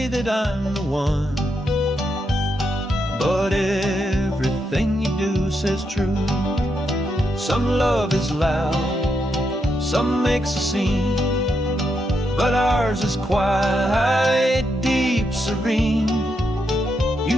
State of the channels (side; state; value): both; normal; correlation 0.81